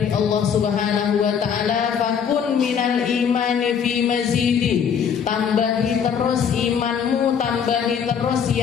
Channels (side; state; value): right; quieter; 7.4 dB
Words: Allah Subhanahu wa taala, fakun minal imani fi mazidi. Tambahi terus imanmu, tambahi terus